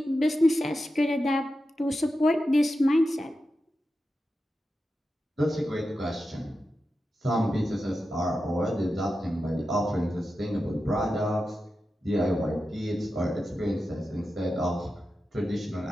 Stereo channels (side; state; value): both; normal; correlation 0.91